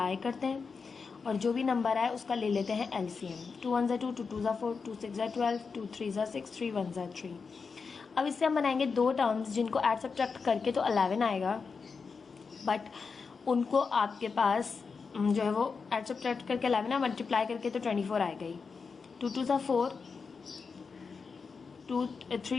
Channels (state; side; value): quieter; right; 5.1 dB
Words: करते हैं और जो भी नंबर आए उसका ले लेते हैं एलसीएम। 2 1 2, 2 2 4, 2 6 12, 2 3 6, 3 1 3। अब इससे हम बनाएंगे 2 टर्म्स जिनको ऐड सब्ट्रैक्ट करके तो 11 आएगा, बट उनको आपके पास जो है वो ऐड सब्ट्रैक्ट करके 11 मल्टीप्लाई करके तो 24 आएगा ही। 2 2 4,